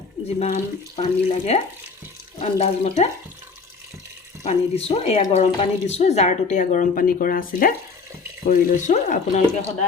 যিমান পানী লাগে আন্দাজমতে পানী দিছোঁ, এয়া গৰম পানী দিছোঁ, জাৰটোতে এয়া গৰম পানী কৰা আছিলে কৰি লৈছোঁ। আপোনালোকে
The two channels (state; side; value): quieter; right; 4.7 dB